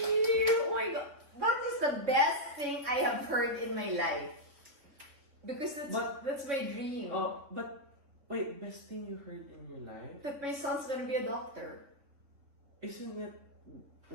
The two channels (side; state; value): left; late; 3.6 ms